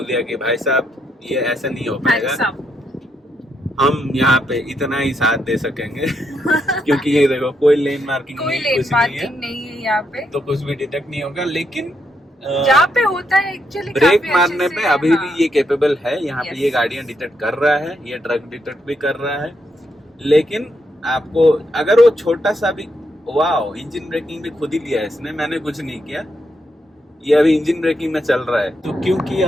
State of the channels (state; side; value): normal; both; correlation 0.79